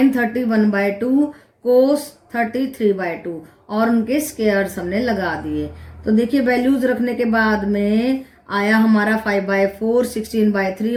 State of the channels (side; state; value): both; identical; correlation 1.00